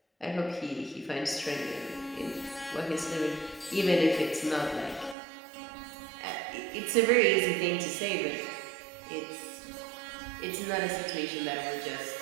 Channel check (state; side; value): drops out; left; at 5.2 s